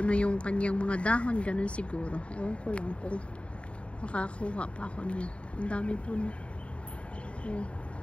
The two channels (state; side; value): late; right; 0.060 ms